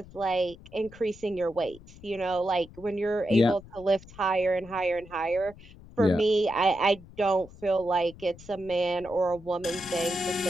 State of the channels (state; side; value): noise; left; rumble, 20 dB below the sound